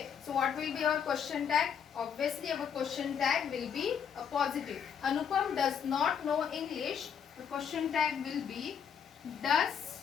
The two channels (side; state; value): right; quieter; 7.6 dB